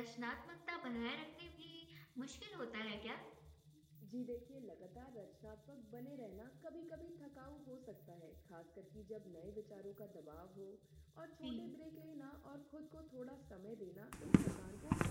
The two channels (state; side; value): identical; both; correlation 1.00